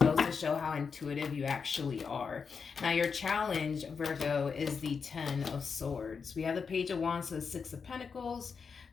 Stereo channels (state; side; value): quieter; right; 5.7 dB